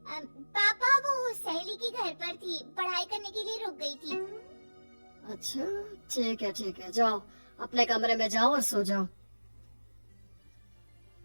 पापा, वो सहेली के घर पर थी, पढ़ाई करने के लिए रुक गई थी। अच्छा ठीक है, जाओ अपने कमरे में जाओ और सो जाओ।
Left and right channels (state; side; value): inverted; both; correlation -1.00